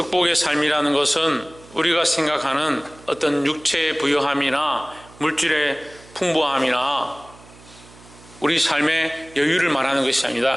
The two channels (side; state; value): right; noise; hum, 23 dB below the sound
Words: 삶이라는 것은 우리가 생각하는 어떤 육체의 부유함이나 물질의 풍부함이나 우리 삶의 여유를 말하는 것이